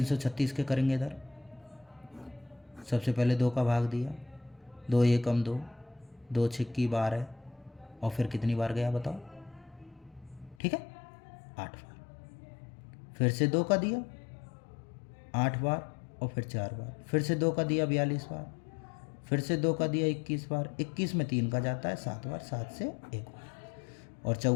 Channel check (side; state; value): right; drops out; at 10.6 s